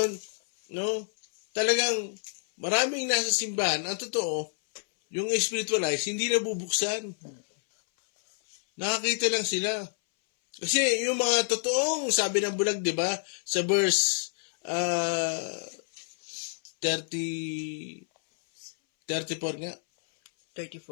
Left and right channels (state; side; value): silent; right; 59 dB below the other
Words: no, talagang maraming nasa simbahan, ang totoo, yung spiritual eyes, hindi nabubuksan. Nakakita lang sila. Kasi yung mga totoong, sabi ng bulag, di ba, sa verse 34 nga.